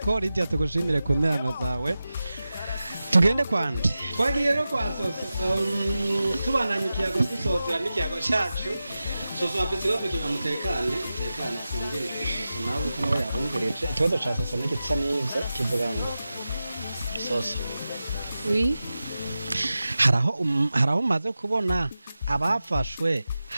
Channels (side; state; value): both; inverted; correlation -0.94